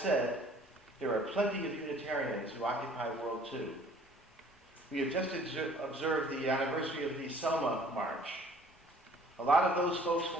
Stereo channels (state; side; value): normal; both; correlation 0.54